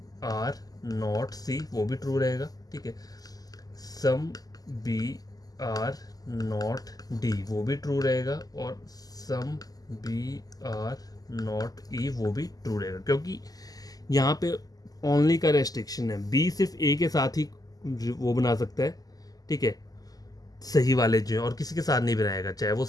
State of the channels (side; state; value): right; late; 0.18 ms